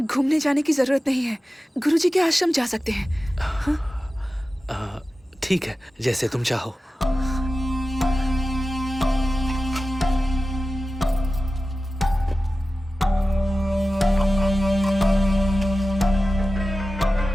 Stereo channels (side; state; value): both; normal; correlation 0.94